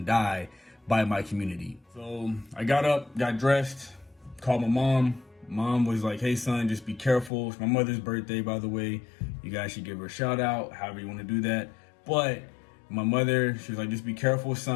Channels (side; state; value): right; drops out; at 7.3 s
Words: die by my community. So I got up, got dressed, called my mom. Mom was like, hey, son, just be careful. It's my mother's birthday, by the way. You guys should give her a shout out, however you want to do that. But my mother, she was like, just be careful,